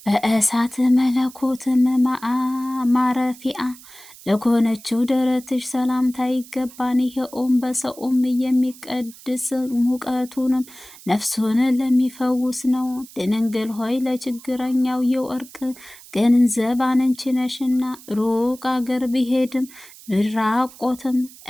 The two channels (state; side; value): noise; right; hiss, 20 dB below the sound